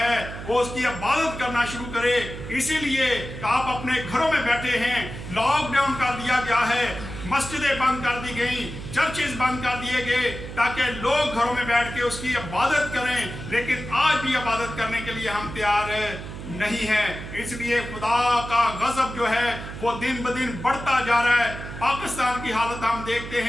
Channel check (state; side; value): noise; right; hum, 10 dB below the sound